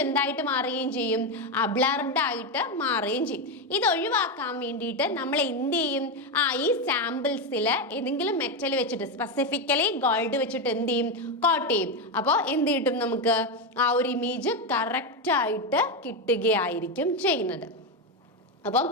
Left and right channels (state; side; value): normal; both; correlation 0.10